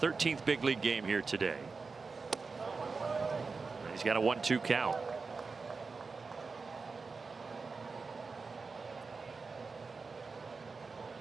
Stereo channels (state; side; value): quieter; left; 4.5 dB